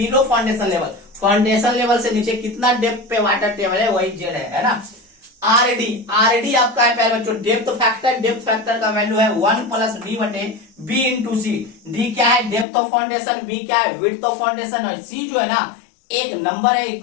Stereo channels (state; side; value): drops out; right; at 12.7 s